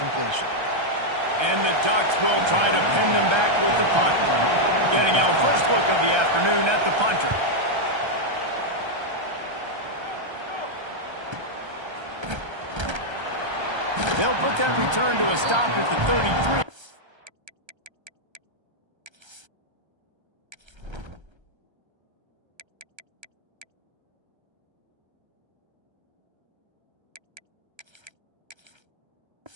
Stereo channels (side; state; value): left; late; 1.3 ms